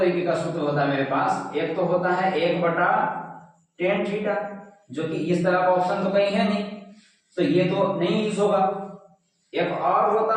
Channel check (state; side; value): identical; both; correlation 1.00